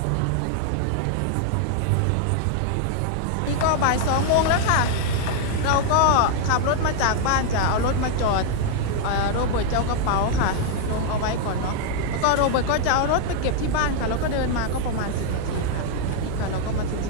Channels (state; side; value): different; both; correlation 0.00